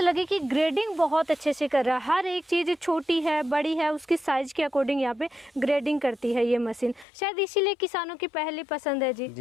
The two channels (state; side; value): drops out; right; at 7.1 s